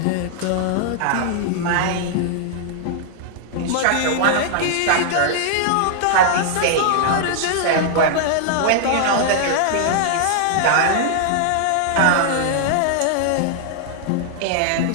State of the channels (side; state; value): both; different; correlation -0.01